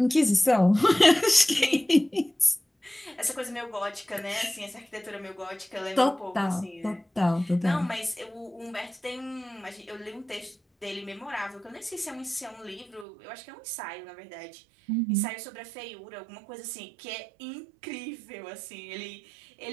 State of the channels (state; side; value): drops out; left; at 13.1 s